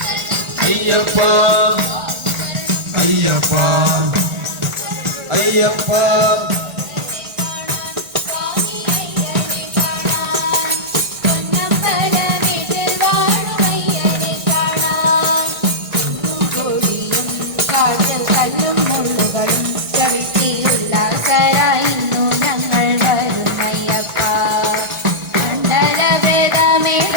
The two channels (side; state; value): left; late; 1.8 ms